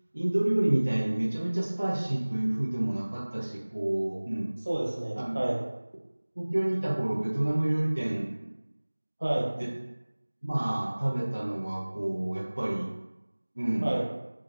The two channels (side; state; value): both; inverted; correlation -1.00